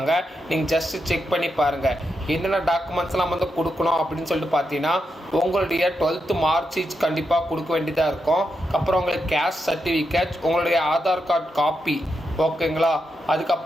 நீங்கள் ஜஸ்ட்டு செக் பண்ணி பாருங்கள். என்னென்ன டாக்குமெண்ட்ஸ்லாம் கொடுக்கணும் அப்படின்னு சொல்லிட்டு பார்த்தீங்கன்னா உங்களுடைய 12th மார்க் ஷீட் கண்டிப்பாக கொடுக்க வேண்டியதாக இருக்கும். அப்புறம் உங்களுக்கு கேஸ்ட் சர்டிஃபிகேட், உங்களுடைய ஆதார் கார்டு காப்பி. ஓகேங்களா?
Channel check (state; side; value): normal; both; correlation 0.85